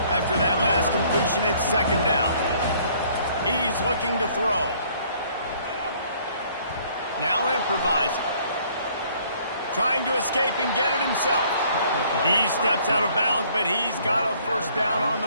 After that last completion, it's second down. He's looking to throw. Now improvising. Trying to escape and get it himself. He steps out of bounds, but he's got a first down on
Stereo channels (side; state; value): both; inverted; correlation -0.60